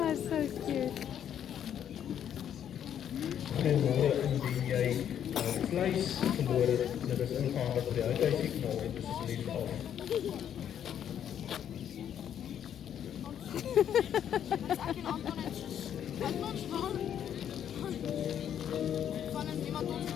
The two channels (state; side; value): quieter; right; 9.5 dB